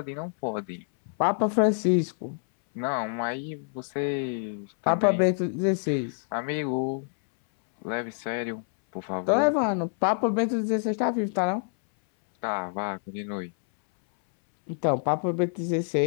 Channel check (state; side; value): silent; right; 60 dB below the other